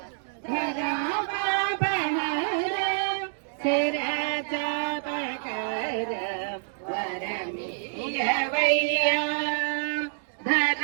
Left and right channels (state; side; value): silent; left; digital silence